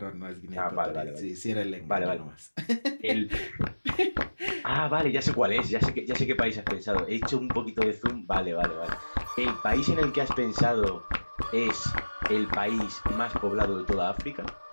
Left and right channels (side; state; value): both; inverted; correlation -1.00